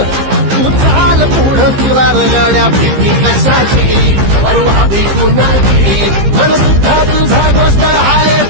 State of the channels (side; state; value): left; late; 15 ms